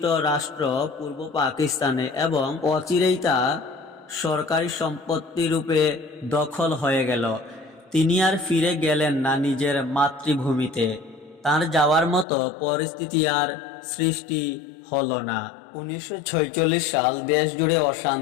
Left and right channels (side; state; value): right; drops out; at 12.2 s